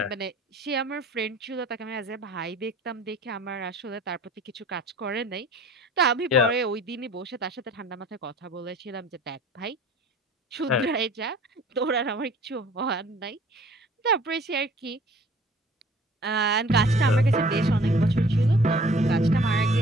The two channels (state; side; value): normal; both; correlation 0.50